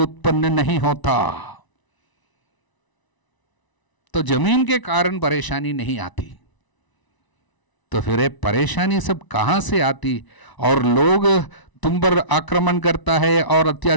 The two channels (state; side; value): late; right; 1.0 ms